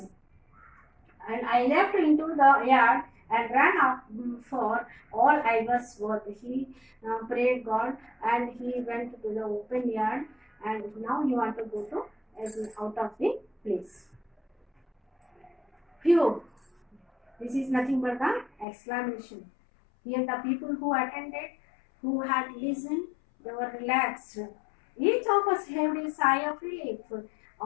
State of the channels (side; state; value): right; drops out; at 18.7 s